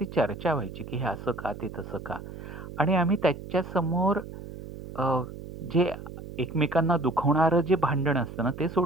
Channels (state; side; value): noise; right; hum, 12 dB below the sound